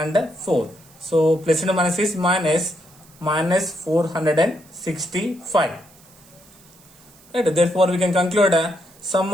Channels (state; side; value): noise; right; hiss, 26 dB below the sound